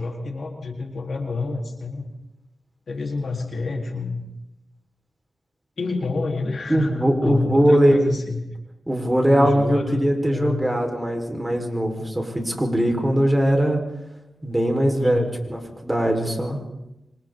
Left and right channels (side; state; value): both; normal; correlation 0.95